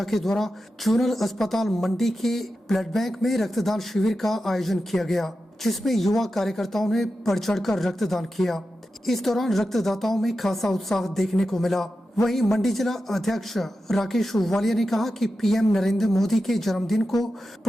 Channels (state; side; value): normal; both; correlation 0.91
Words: के द्वारा जोनल अस्पताल मंडी के ब्लड बैंक में रक्तदान शिविर का आयोजन किया गया, जिसमें युवा कार्यकर्ताओं ने बढ़ चढ़कर रक्तदान किया। इस दौरान रक्तदाताओं में खासा उत्साह देखने को मिला। वहीं मंडी जिला अध्यक्ष राकेश वालिया ने कहा कि पीएम नरेंद्र मोदी के जन्मदिन को